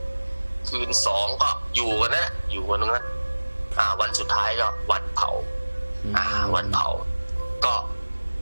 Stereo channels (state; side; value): inverted; both; correlation -1.00